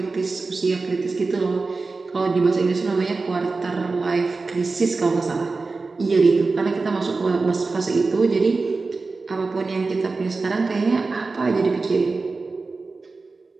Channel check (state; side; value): quieter; left; 3.9 dB